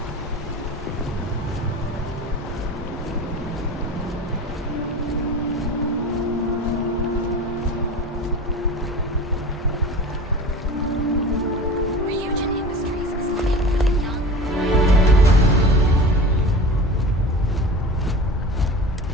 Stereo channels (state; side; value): normal; both; correlation 0.35